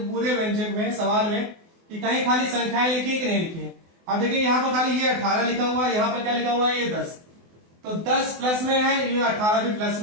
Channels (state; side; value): late; left; 24 ms